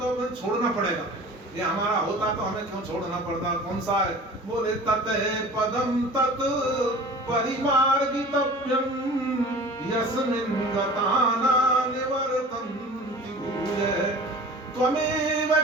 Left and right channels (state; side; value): normal; both; correlation 0.41